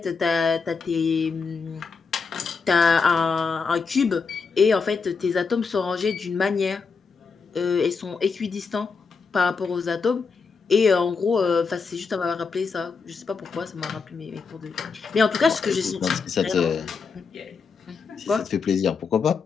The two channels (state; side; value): quieter; right; 5.1 dB